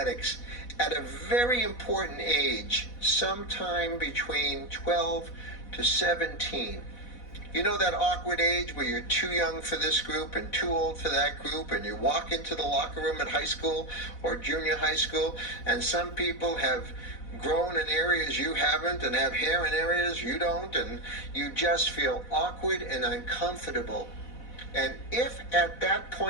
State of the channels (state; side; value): late; right; 4.1 ms